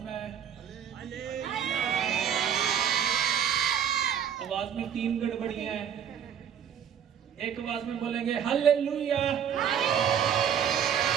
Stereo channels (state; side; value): quieter; left; 8.5 dB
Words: है, आवाज में 3 गड़बड़ियां हैं। एक आवाज में बोलेंगे हालेलुया।